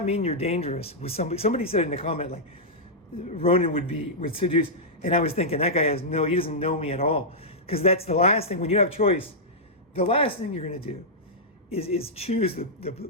mean you're dangerous with somebody. Somebody said in the comment, like, Ronin would seduce. And I was thinking, that guy he doesn't know me at all. Because that's the last thing, when you have choice, the last thing you're going to do is choose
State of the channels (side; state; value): both; normal; correlation -0.10